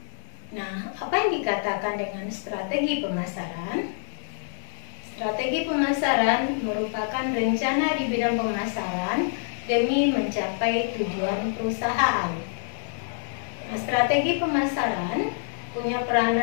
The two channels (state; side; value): silent; right; 61 dB below the other